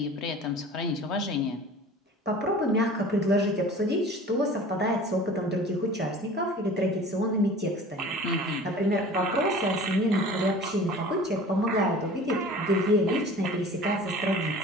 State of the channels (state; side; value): normal; both; correlation 0.43